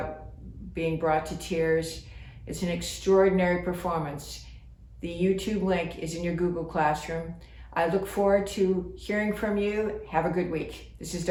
being brought to tears. It's an extraordinary performance. The YouTube link is in your Google Classroom. I look forward to hearing from you. Have a good week. This is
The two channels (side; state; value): both; identical; correlation 1.00